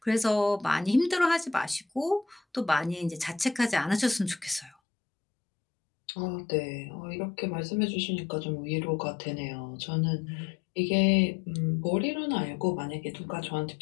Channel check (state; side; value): drops out; right; at 4.8 s